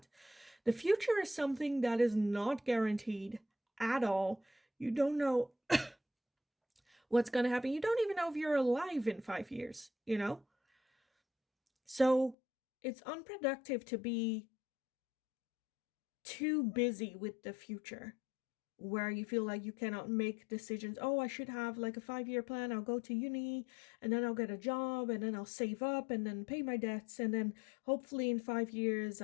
The future is something that is not guaranteed at all. You don't know what's going to happen. You don't even know if you're alive in 5 years, you know? So it's unproductive to be too busy with the future where you feel like you cannot make decisions. Oh, I should have like a 5 year plan. I'll go to uni and then I'll get a job and then I'll save up and then pay my debts. And then hopefully in 5 years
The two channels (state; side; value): drops out; right; at 12.4 s